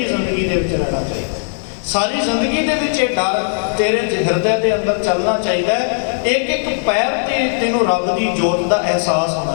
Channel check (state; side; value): silent; right; digital silence